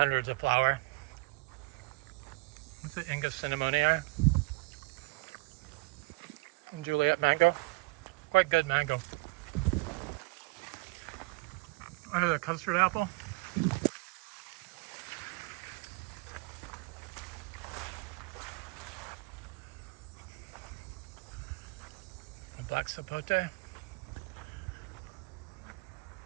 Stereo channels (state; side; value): quieter; left; 26.5 dB